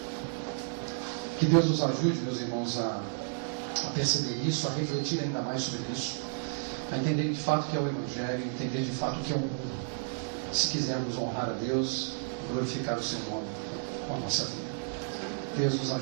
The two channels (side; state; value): left; silent; 57 dB below the other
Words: Que Deus nos ajude, meus irmãos, a perceber isso, a refletir ainda mais sobre isso, a entender de fato o que é o Evangelho, entender de fato o que é o mundo, se quisermos honrar a Deus, glorificar o seu nome com a nossa vida. Deus nos